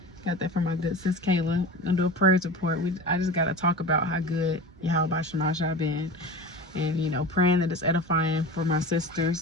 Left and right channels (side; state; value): both; normal; correlation 0.33